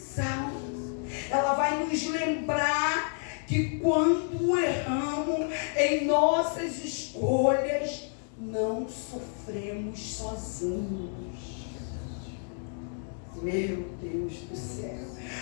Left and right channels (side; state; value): right; silent; 58 dB below the other